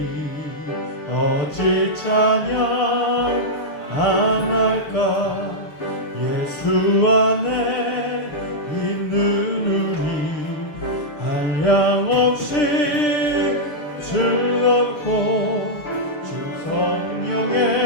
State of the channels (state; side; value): late; right; 6.7 ms